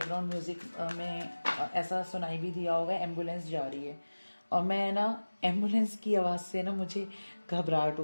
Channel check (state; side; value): inverted; both; correlation -1.00